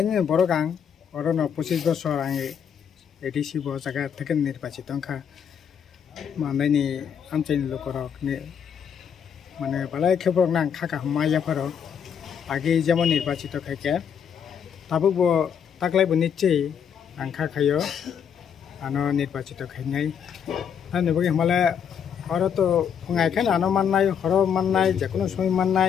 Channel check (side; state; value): right; quieter; 7.8 dB